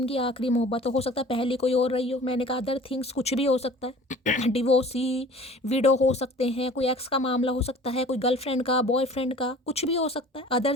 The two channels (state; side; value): normal; both; correlation 0.46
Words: आखिरी मोहब्बत हो सकता है पहली कोई और रही हो। मैंने कहा अदर थिंग्स कुछ भी हो सकता है। डिवोर्सी, विडो हो सकते हैं, कोई एक्स का मामला हो सकता है, कोई गर्लफ्रेंड का, बॉयफ्रेंड का, कुछ भी हो सकता है। अदर